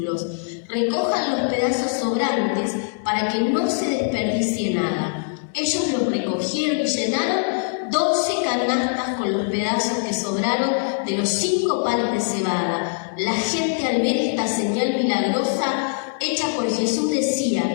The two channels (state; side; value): silent; right; digital silence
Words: recojan los pedazos sobrantes para que no se desperdicie nada. Ellos los recogieron y llenaron 12 canastas con los pedazos que sobraron de los 5 panes de cebada. La gente, al ver esta señal milagrosa hecha por Jesús,